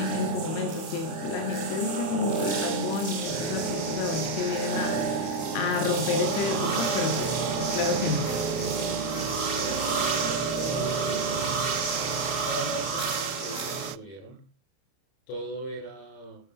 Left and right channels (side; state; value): right; late; 30 ms